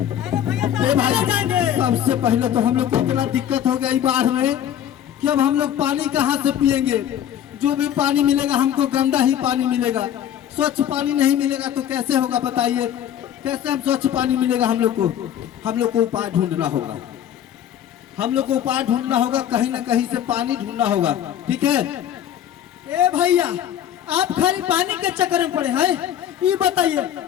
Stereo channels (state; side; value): quieter; right; 10.4 dB